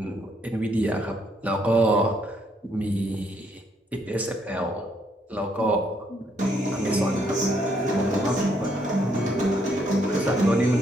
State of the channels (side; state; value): both; normal; correlation 0.71